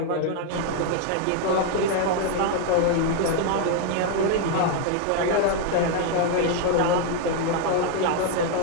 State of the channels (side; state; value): both; different; correlation 0.00